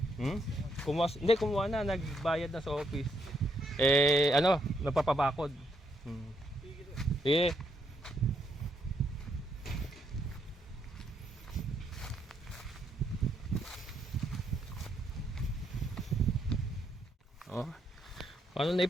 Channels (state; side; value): normal; both; correlation 0.75